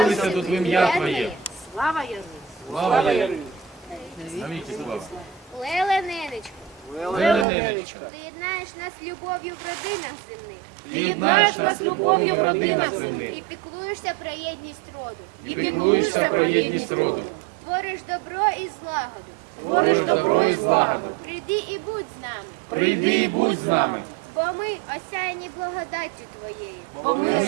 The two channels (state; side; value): drops out; left; at 7.5 s